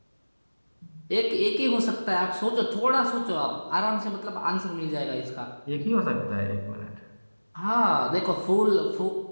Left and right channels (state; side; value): inverted; both; correlation -1.00